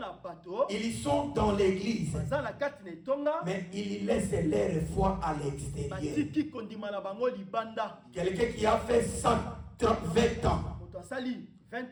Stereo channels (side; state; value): both; identical; correlation 1.00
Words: bato ils sont dans l'église, baza na kati na etonga mais ils laissent leur foi à l'extérieur. batiki kondima na bango libanda Quelqu'un qui a fait 120 ans, moto asali